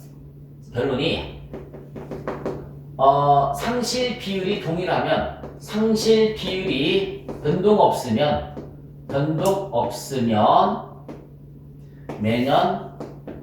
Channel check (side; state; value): both; identical; correlation 1.00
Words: 상실 비율이 동일하면 상실 비율이 변동 없으면 매년